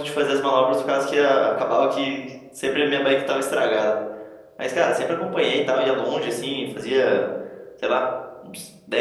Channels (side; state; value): both; identical; correlation 1.00